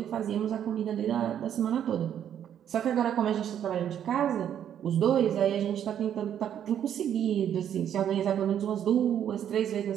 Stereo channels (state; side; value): quieter; left; 9.7 dB